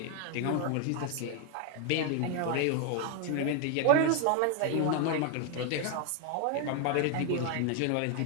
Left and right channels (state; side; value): different; both; correlation 0.01